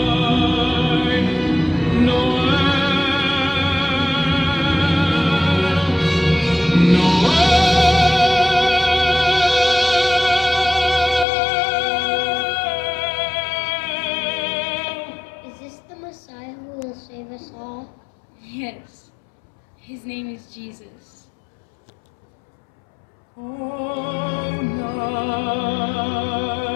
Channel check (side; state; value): right; drops out; at 11.2 s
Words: Is this the Messiah who will save us all? Yes, his name is Jesus. Oh, night